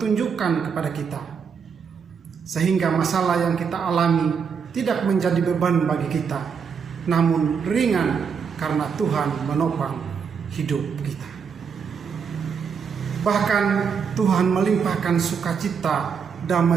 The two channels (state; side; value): quieter; left; 6.4 dB